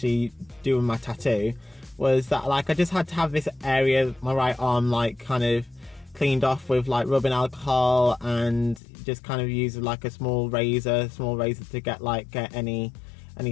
doing my tattoo was that I just had to have this area, my right arm, kind of cleaned off with rubbing alcohol, and just kind of use a small razor to get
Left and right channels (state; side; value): drops out; right; at 8.8 s